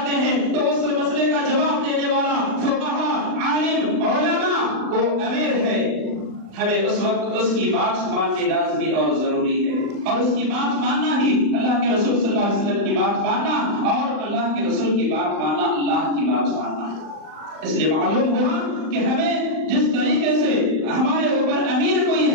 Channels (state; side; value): late; left; 39 ms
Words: ہیں، تو اس مسئلے کا جواب دینے والا فقہا، عالم، علماء وہ امیر ہے. ہمیں اس وقت اس کی بات ماننی لازمی اور ضروری ہے، اور اس کی بات ماننا ہی اللہ کے رسول صلی اللہ علیہ وسلم کی بات ماننا، اور اللہ کے رسول کی بات ماننا اللہ کی بات ماننا ہے. اس لیے معلوم ہوا کہ ہمیں جس طریقے سے ہمارے اوپر امیر کوئی